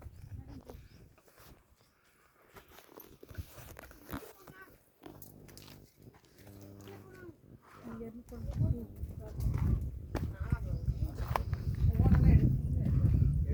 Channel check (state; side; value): identical; both; correlation 1.00